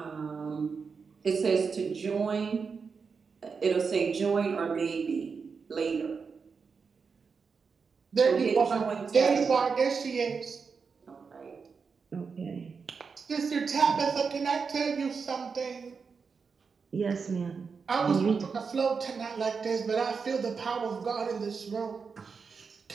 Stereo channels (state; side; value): quieter; left; 5.4 dB